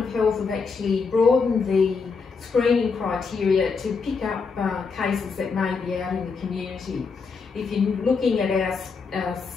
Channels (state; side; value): quieter; right; 5.0 dB